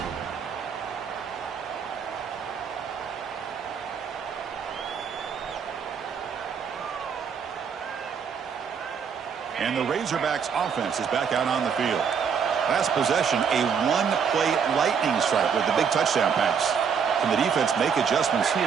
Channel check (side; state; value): left; quieter; 6.8 dB